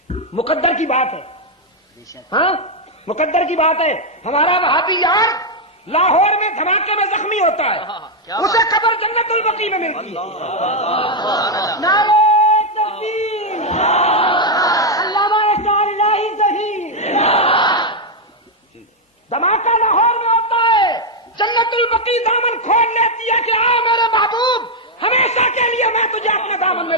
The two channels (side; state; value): both; normal; correlation 0.01